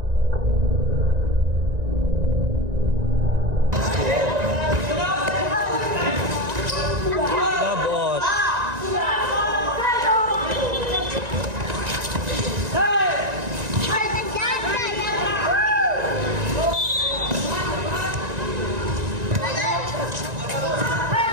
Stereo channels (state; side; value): late; left; 1.9 ms